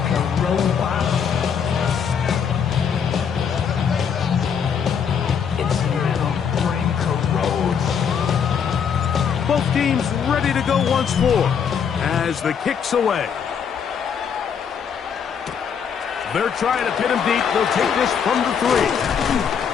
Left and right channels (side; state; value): right; quieter; 7.2 dB